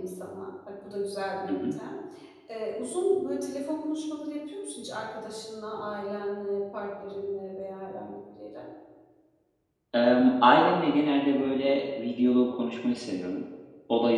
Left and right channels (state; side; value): identical; both; correlation 1.00